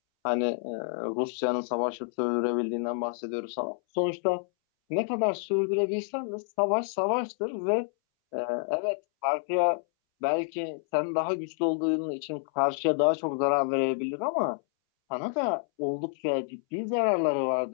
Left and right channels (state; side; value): silent; right; 59 dB below the other